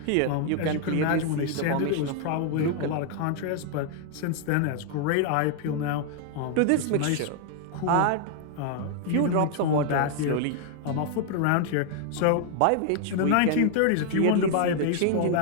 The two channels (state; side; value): different; both; correlation 0.00